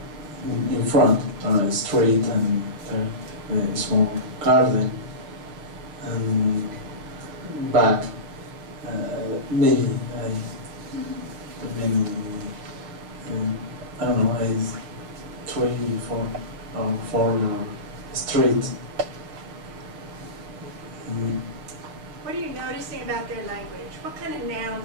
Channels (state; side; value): late; left; 6.4 ms